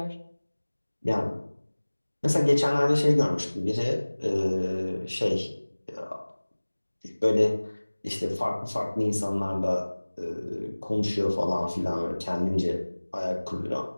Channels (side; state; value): both; inverted; correlation -1.00